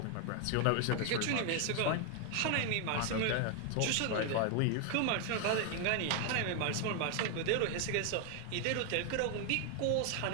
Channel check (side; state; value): both; different; correlation 0.00